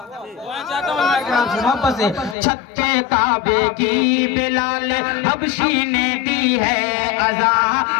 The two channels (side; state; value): right; drops out; at 2.4 s